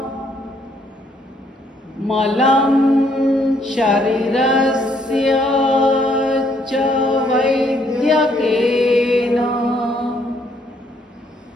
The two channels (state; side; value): normal; both; correlation 0.68